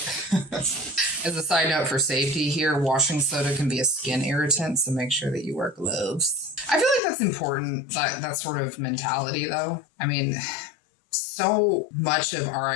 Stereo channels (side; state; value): right; drops out; at 7.0 s